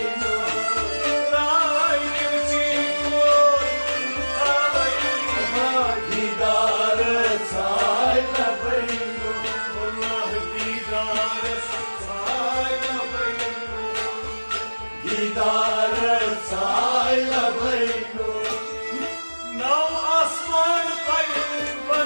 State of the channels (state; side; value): inverted; both; correlation -1.00